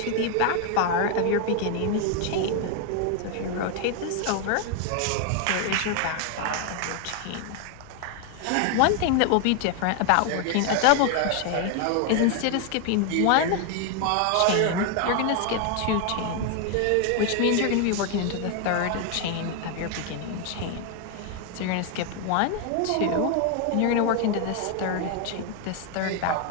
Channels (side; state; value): both; different; correlation 0.01